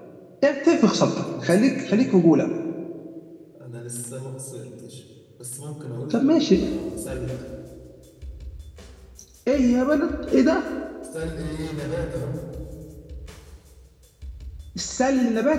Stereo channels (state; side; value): identical; both; correlation 1.00